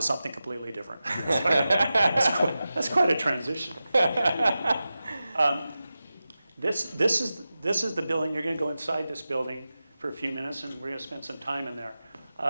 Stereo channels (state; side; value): inverted; both; correlation -0.94